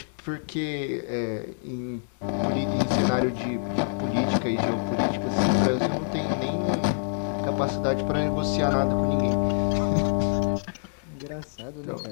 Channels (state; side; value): silent; right; digital silence